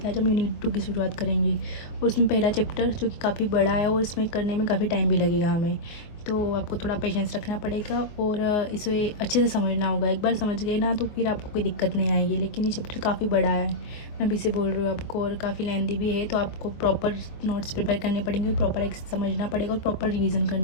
आज हम यूनिट 2 की शुरुआत करेंगे। और उसमें पहला चैप्टर जो कि काफ़ी बड़ा है और इसमें करने में काफ़ी टाइम भी लगेगा हमें, तो आपको थोड़ा पेशेंस रखना पड़ेगा और इसे अच्छे से समझना होगा। एक बार समझ गए ना तो फिर आपको कोई दिक्कत नहीं आएगी। लेकिन ये चैप्टर काफ़ी बड़ा है, मैं अभी से बोल रही हूँ आपको, और काफ़ी लेंदी भी है, तो आपको प्रॉपर नोट्स प्रिपेयर करने पड़ेंगे, प्रॉपर एक समझना पड़ेगा और प्रॉपर रिवीजन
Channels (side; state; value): right; late; 24 ms